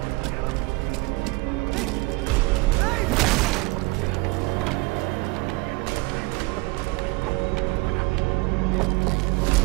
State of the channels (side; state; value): left; quieter; 24.2 dB